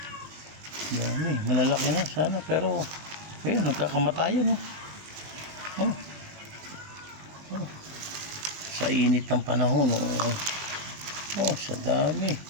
Dami, malalaki na sana, pero ayun, nagkakamatayan o. Oh. Oh. Sa init ng panahon o. Oh, sa dami.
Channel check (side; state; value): left; late; 19 ms